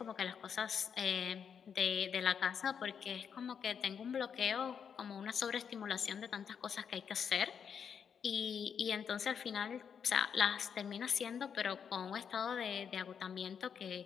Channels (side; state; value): right; quieter; 7.3 dB